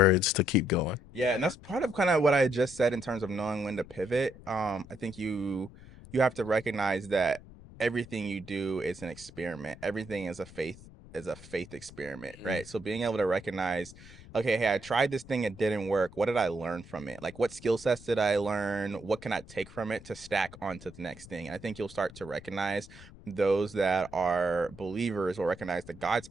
to keep going?" Yeah, and that's part of kind of what I just said in terms of knowing when to pivot. I think you have to recognize that everything you do is an experiment. Everything is a faith experiment, Mhm. right? So being able to recognize, okay, hey, I tried this thing, it didn't work. What did I learn from it? Like what skill sets did I learn? What can I take from it to stack onto the next thing? And I think you'll start to recognize those that are believers will recognize that God's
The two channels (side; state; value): left; noise; rumble, 19 dB below the sound